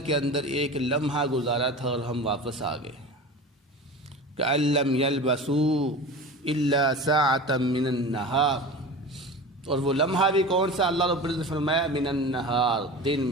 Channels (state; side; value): normal; both; correlation 0.33